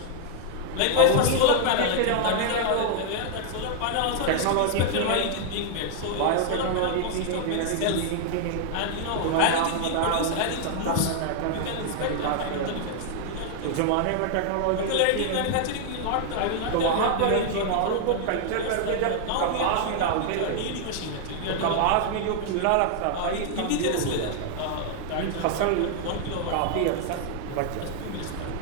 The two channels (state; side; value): different; both; correlation 0.00